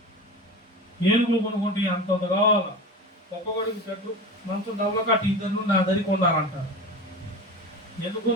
ఏనుగులు కొనుక్కుంటే అంతంత కావాలా. ఒక్కొక్కడికి చెట్టు మంచం డబ్బులు కట్టి ఇద్దరు నా దరికి ఉండాలంటారు. ఎందుకు?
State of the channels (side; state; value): both; normal; correlation 0.29